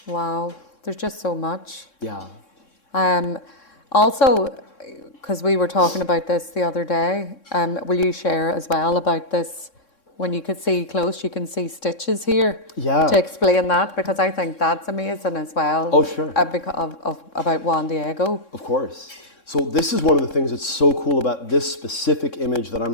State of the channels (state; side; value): late; right; 3.6 ms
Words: Wow, there's just so much. Yeah. Also, because we were talking about this the other day, will you share as well about this? When you could see close, you can see stitches here. Yeah. To explain that, because I think that's amazing as well. Oh, sure. About Juan Diego. Of course. So this is one of the things that's so cool about this specific image that I'm